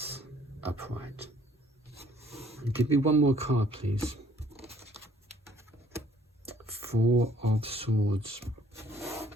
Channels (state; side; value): normal; both; correlation 0.60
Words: upright. And give me one more card, please. Four of Swords.